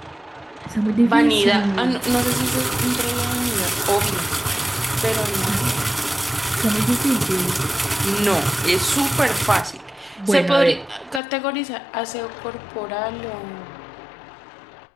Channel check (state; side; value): drops out; right; at 11.2 s